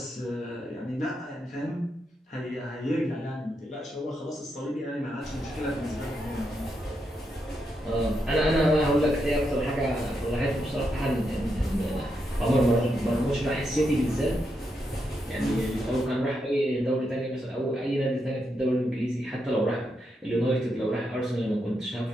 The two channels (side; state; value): both; normal; correlation 0.82